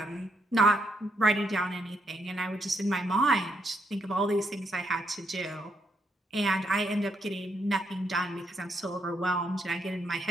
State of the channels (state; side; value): normal; both; correlation 0.76